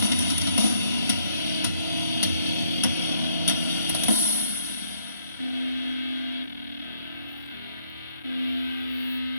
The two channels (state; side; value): inverted; both; correlation -0.70